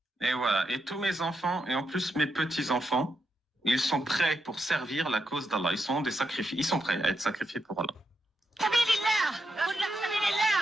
Et voilà, et tous mes enfants, et en plus mes petits-enfants, ils sont prêts pour servir la cause d'Allah. Ils sont prêts à être sacrifiés pour Allah.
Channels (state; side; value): normal; both; correlation 0.83